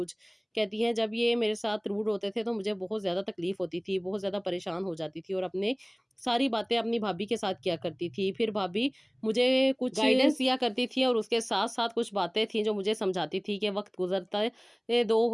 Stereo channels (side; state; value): both; identical; correlation 1.00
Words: कहती हैं जब ये मेरे साथ रूड होते थे तो मुझे बहुत ज़्यादा तकलीफ़ होती थी, बहुत ज़्यादा परेशान हो जाती थी और अपने सारी बातें अपनी भाभी के साथ किया करती थी। फिर भाभी मुझे कुछ गाइडेंस दिया करती थी और उसके साथ-साथ कुछ बातें थी जो मुझे समझाती थी कि वक़्त गुज़रता ये